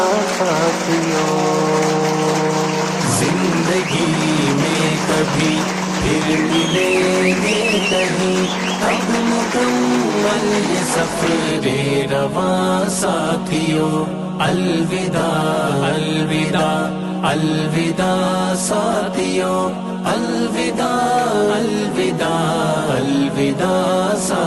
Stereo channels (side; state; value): both; identical; correlation 1.00